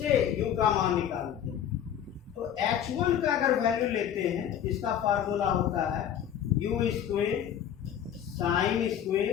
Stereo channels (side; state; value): right; quieter; 9.7 dB